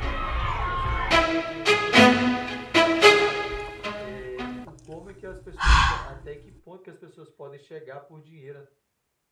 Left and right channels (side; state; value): both; identical; correlation 1.00